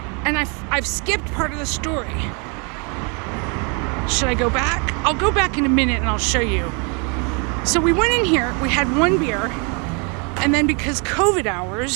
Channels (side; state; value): left; quieter; 34.3 dB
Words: And I've skipped part of the story. Should I go back? I'll go back in a minute and I'll show you. So we went in here, we had one beer, and then because COVID